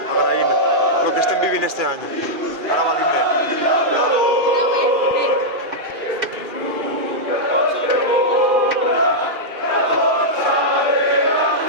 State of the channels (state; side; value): late; left; 2.4 ms